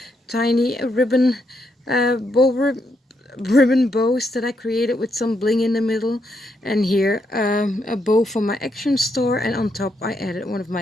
Tiny ribbon ribbon bows that I created with some bling in the middle. And here a bow from my Action store, and on top I added one of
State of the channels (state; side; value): normal; both; correlation 0.79